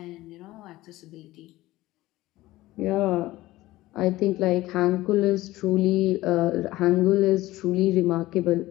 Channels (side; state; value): right; quieter; 17.4 dB